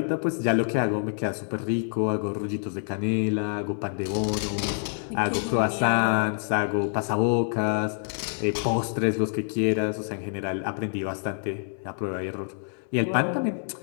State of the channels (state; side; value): silent; right; digital silence